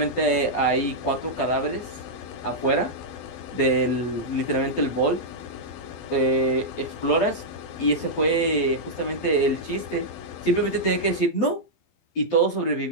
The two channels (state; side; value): late; right; 12 ms